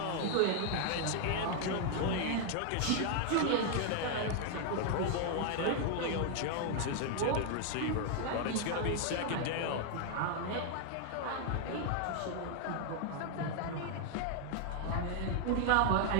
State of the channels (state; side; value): different; both; correlation 0.00